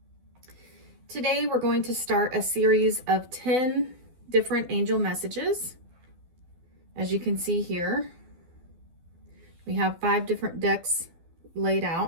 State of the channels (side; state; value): left; late; 12 ms